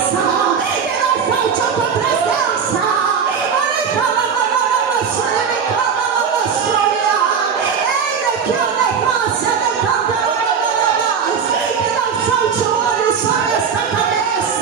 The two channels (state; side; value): quieter; left; 6.6 dB